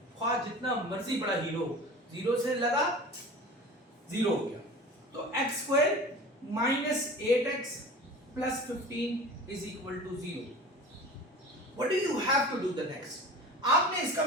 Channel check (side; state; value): both; normal; correlation 0.38